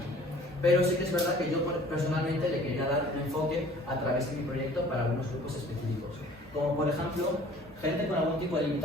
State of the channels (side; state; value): both; normal; correlation 0.51